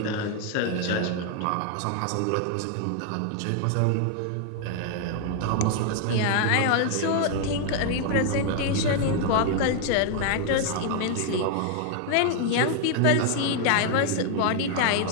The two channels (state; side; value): different; both; correlation 0.00